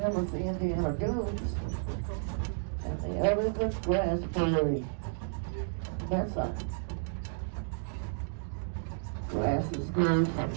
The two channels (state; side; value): silent; left; digital silence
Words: the Indiana goats. And the other's a grass prairie. That's a grasses grow from